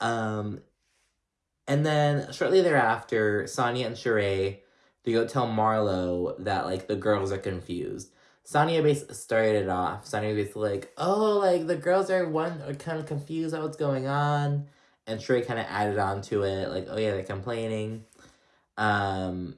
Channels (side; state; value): both; identical; correlation 1.00